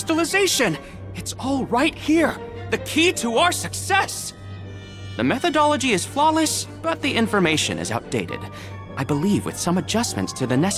It's all right here. The key to our success. The methodology is flawless, but the information is outdated. I believe with some adjustments to the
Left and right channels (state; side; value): identical; both; correlation 1.00